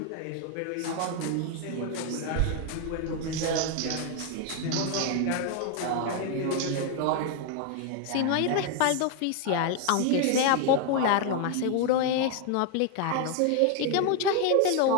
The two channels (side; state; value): both; different; correlation 0.01